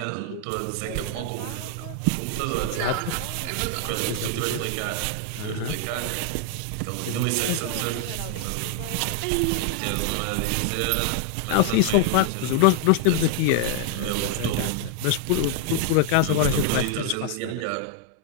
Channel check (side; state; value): both; different; correlation 0.00